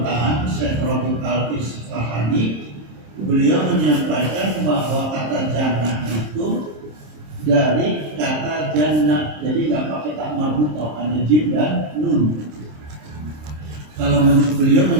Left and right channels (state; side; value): late; left; 26 ms